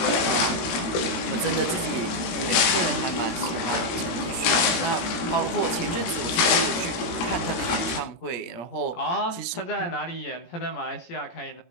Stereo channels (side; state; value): right; late; 18 ms